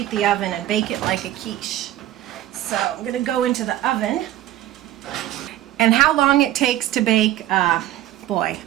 the oven and bake it like a quiche. So I'm going to go into the oven, and how long it takes to bake, boy,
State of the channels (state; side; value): quieter; left; 13.7 dB